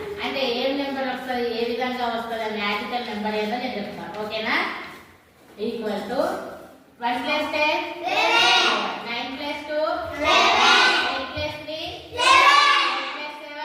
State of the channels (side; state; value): both; identical; correlation 1.00